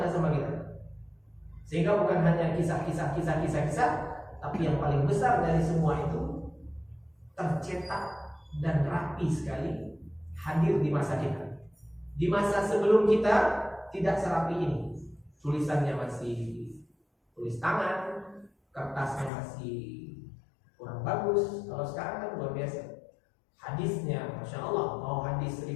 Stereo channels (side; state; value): right; drops out; at 19.3 s